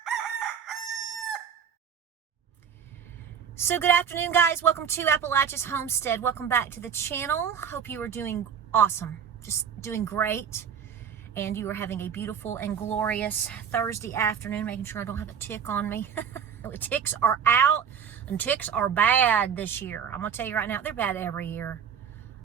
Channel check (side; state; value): left; quieter; 7.7 dB